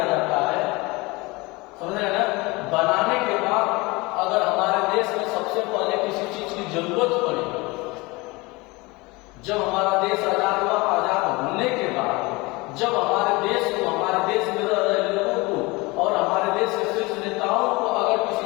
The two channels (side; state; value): right; quieter; 24.0 dB